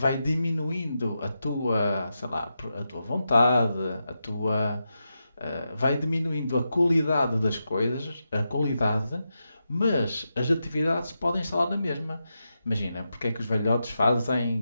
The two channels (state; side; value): inverted; both; correlation -0.87